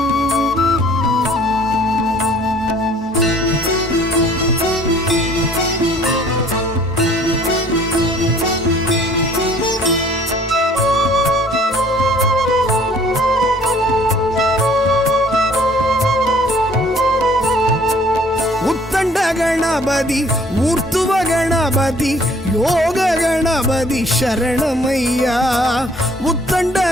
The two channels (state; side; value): normal; both; correlation 0.56